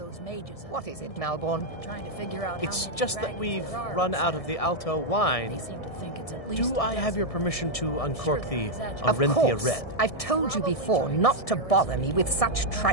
What is it, Malborn? It's just that we've run out of the Alto wine. Do I have your permission to uncork the Arenthia Red? I've told you before not to bother me with such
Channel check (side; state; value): right; late; 1.6 ms